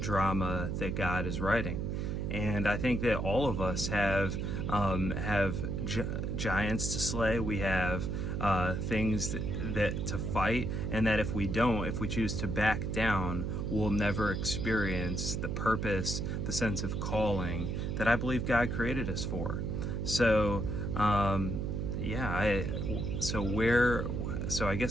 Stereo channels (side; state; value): right; noise; hum, 1 dB below the sound